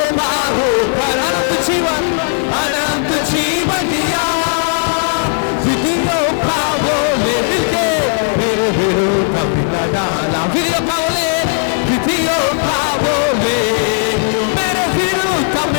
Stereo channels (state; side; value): silent; right; 59 dB below the other